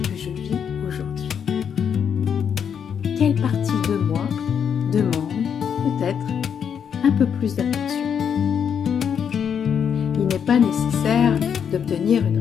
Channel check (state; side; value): quieter; right; 7.7 dB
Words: je vis aujourd'hui. Quelle partie de moi demande peut-être un peu plus d'attention. Il n'est pas nécessaire d'obtenir une